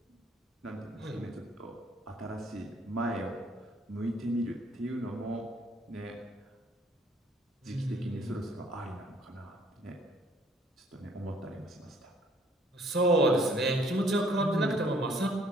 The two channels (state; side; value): normal; both; correlation 0.61